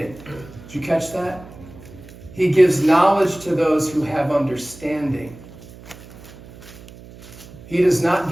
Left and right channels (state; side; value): noise; right; hum, 18 dB below the sound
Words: Did you catch that? He gives knowledge to those who have understanding. He does not